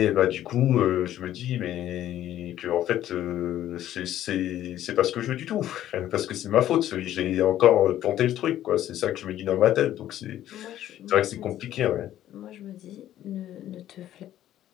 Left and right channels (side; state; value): right; quieter; 12.4 dB